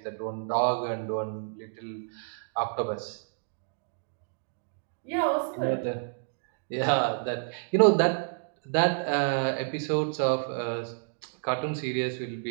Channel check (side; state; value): left; silent; digital silence